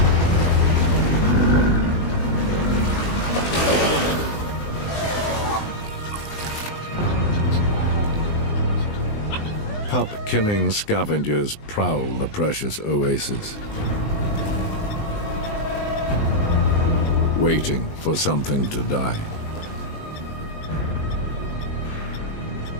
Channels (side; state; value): right; late; 20 ms